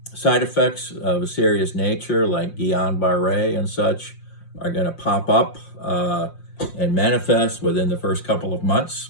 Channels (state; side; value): late; right; 5.7 ms